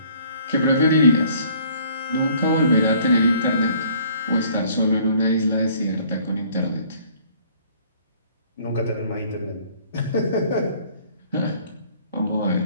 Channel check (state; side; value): inverted; both; correlation -0.57